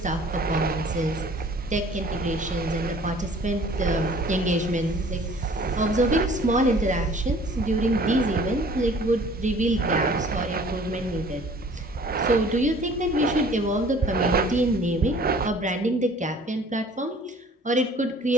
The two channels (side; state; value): both; normal; correlation 0.51